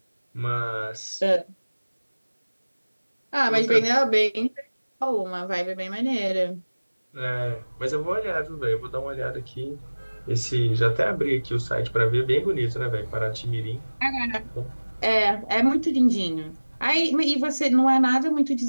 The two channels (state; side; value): inverted; both; correlation -1.00